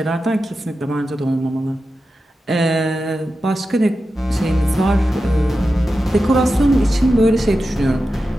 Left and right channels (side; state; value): both; normal; correlation 0.91